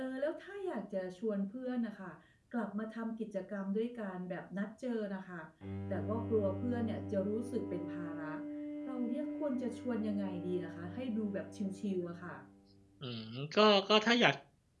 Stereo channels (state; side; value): identical; both; correlation 1.00